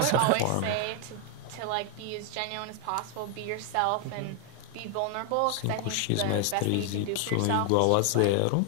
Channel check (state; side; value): different; both; correlation 0.00